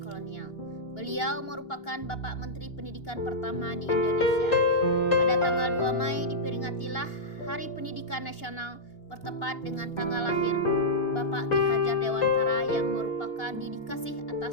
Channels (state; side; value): late; right; 2.8 ms